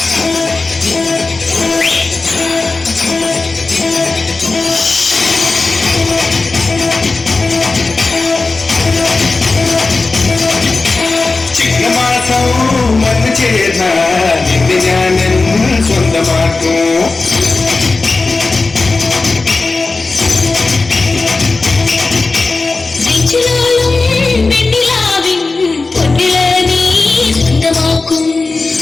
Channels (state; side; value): quieter; right; 3.7 dB